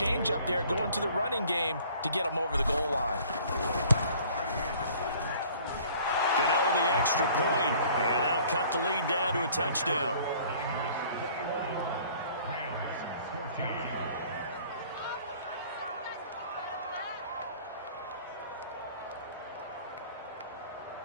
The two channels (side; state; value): both; inverted; correlation -0.53